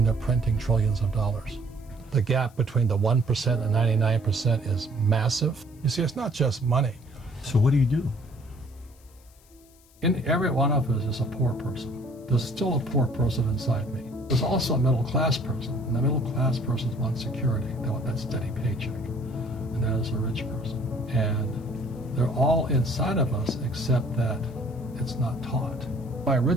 they're printing trillions of dollars? The gap between the 1% and 99% is massive. You see, it's not just money. So what do you do? In every one of us is a poor person. There's still a poor person inside me. There's also a middle class person, and the middle class person wants security. They want that steady paycheck, and that is a rich person. And they're all inside of us, except that it's not taught. My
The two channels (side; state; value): left; noise; hiss, 29 dB below the sound